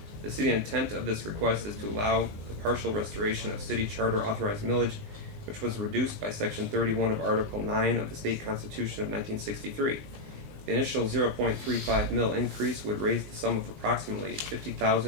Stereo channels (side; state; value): left; late; 19 ms